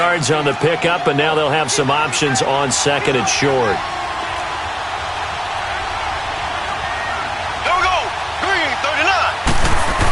on the pickup, and now they'll have some options on 2nd and short.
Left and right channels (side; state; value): both; identical; correlation 1.00